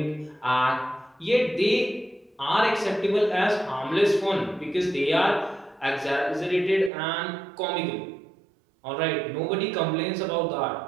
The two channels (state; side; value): drops out; left; at 6.9 s